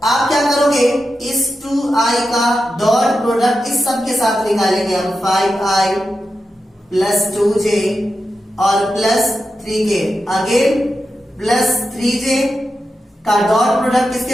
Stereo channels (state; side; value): normal; both; correlation 0.90